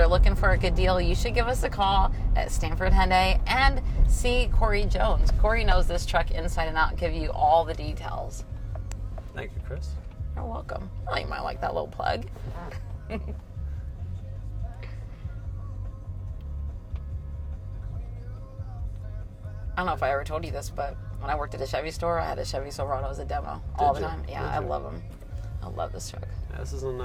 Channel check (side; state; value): both; identical; correlation 1.00